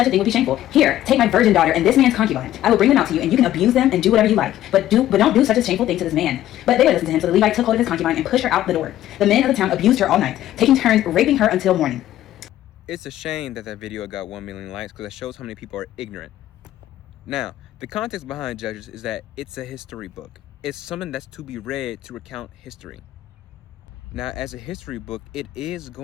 a thing would be shameful. Here, take my virgin daughter and this man's concubine. I will bring them out to you, and you can abuse them and do whatever you like. But don't do such a shameful thing to this man. But they would listen to him, so the Levite took hold of his concubine and pushed her out the door. The men of the town abused her all night, taking turns raping her until morning. It's a shame that video got 1 million likes because it shows how many people are ignorant. Now, the context behind Judges is that it's a history book. It's something that's to be read to recount history. Now, as a history book, it is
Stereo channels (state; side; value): quieter; right; 13.2 dB